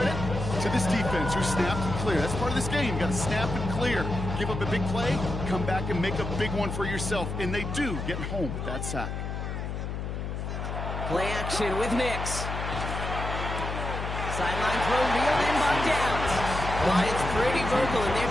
to this defense who snapped and clear. That's part of this game. You got to snap and clear. Give up a big play, come back and make a big one for yourself. And they do get home with that sack. Play action with Nix. Sideline throw reeled in by Downs. Lions pretty vocal in their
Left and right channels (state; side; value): noise; left; hum, 5 dB below the sound